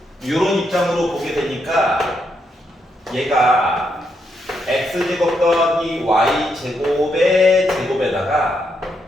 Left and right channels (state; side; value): normal; both; correlation 0.79